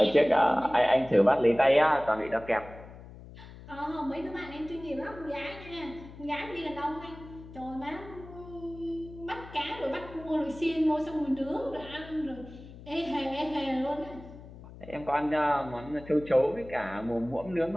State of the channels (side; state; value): left; noise; hum, 16 dB below the sound